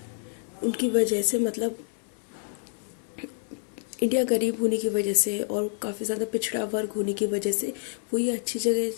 उनकी वजह से, मतलब इंडिया गरीब होने की वजह से और काफ़ी ज़्यादा पिछड़ा वर्ग होने की वजह से वो ये अच्छी जगह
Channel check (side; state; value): right; silent; 60 dB below the other